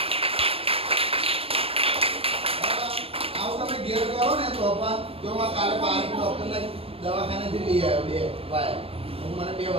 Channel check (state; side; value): late; left; 0.28 ms